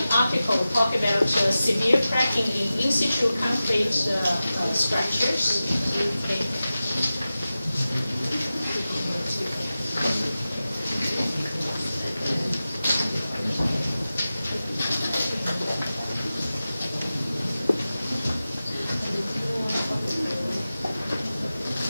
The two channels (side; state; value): both; inverted; correlation -0.94